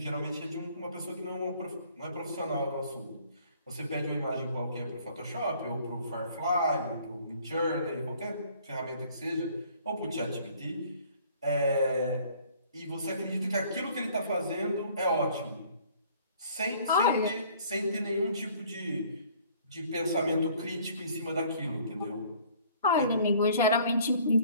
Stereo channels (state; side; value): inverted; both; correlation -0.56